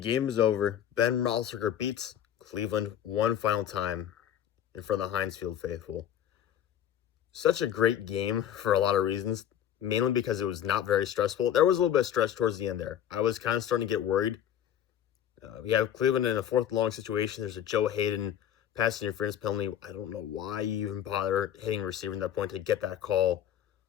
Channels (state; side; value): quieter; right; 10.2 dB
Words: is over. Ben Roethlisberger beats Cleveland one final time in front of the Heinz Field faithful. Such a great game for a lot of reasons, mainly because it was not very stressful. There was a little bit of stress towards the end there. I was kind of starting to get worried. We have Cleveland in a fourth long situation. There's a Joe Haden pass interference penalty. I don't know why you even bother hitting a receiver at that point to get that call.